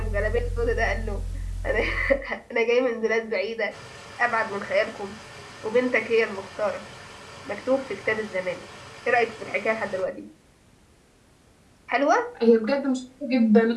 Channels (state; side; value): identical; both; correlation 1.00